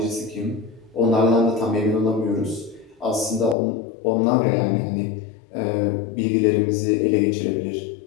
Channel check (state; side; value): drops out; right; at 3.6 s